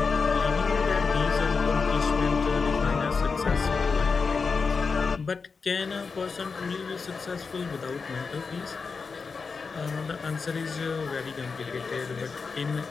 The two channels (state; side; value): quieter; right; 4.9 dB